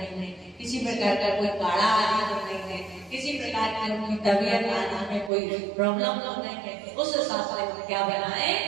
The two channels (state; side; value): drops out; left; at 5.3 s